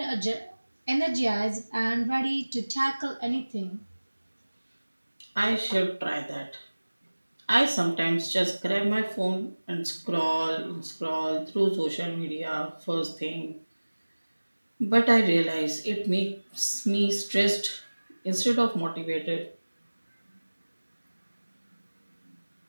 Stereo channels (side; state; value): both; inverted; correlation -1.00